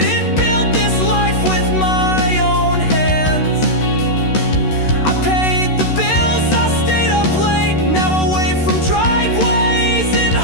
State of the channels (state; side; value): late; right; 13 ms